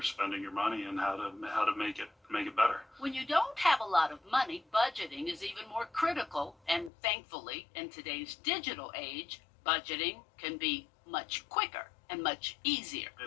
spending your money and how to make it better. When you don't have a lot of money, budgeting is even more critical, and thankfully, in today's digital age, budgeting can be much quicker and much easier.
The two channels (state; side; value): drops out; right; at 6.9 s